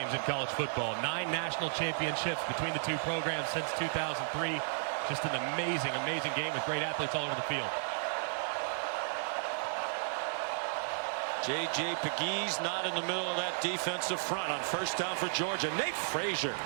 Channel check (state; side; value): silent; left; 55 dB below the other